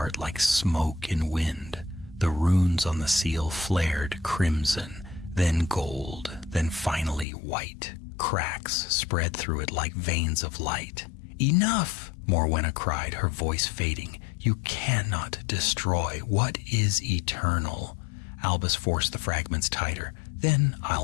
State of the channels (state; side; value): drops out; right; at 7.2 s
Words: like smoke in wind. The runes on the seal flared crimson, then gold, then finally white. Cracks spread through it like veins of light. "Enough!" Morwenna cried, her voice fading. "You cannot destroy what is eternal." Albus forced the fragments tighter. "Then